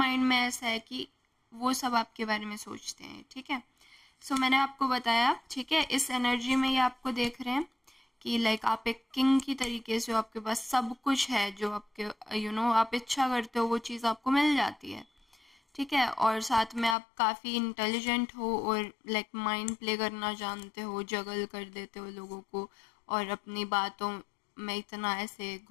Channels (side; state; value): right; drops out; at 16.9 s